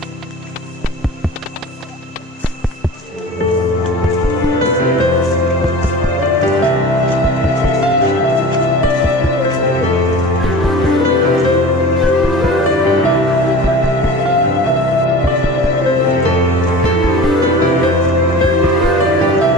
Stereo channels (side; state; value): both; normal; correlation 0.38